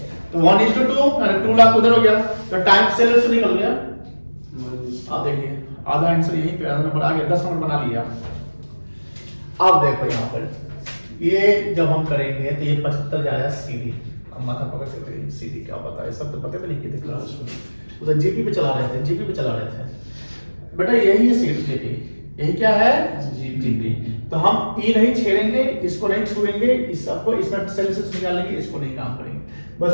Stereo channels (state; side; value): inverted; both; correlation -1.00